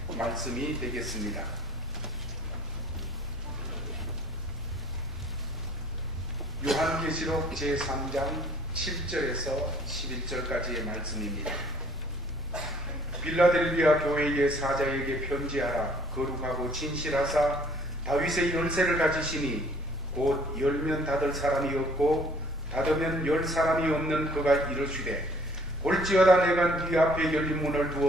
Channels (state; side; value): normal; both; correlation 0.56